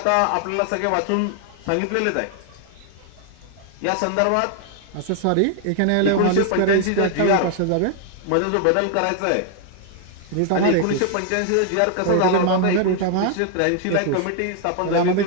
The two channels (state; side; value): different; both; correlation 0.00